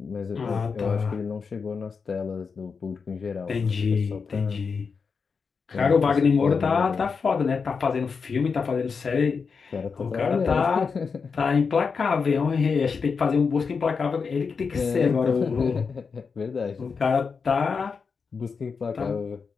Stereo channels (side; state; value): right; quieter; 5.4 dB